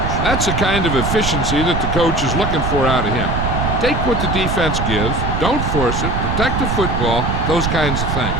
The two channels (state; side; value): noise; right; rumble, 1 dB below the sound